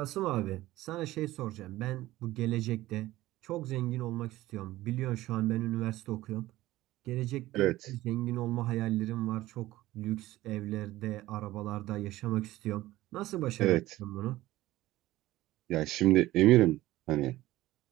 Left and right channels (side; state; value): left; quieter; 16.6 dB